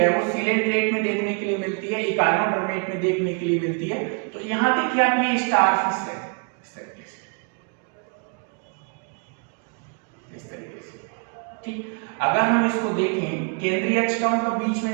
वो सीलेंट्रेट में देखने के लिए मिलती है, इकाइनोडर्मेट में देखने के लिए मिलती है। तो यहां देखिए आप ये स्टारफिश है, इस तरीके से, ठीक। अगर हम इसको देखें केंद्रीय अक्ष का मतलब बीच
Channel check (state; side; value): quieter; left; 36.7 dB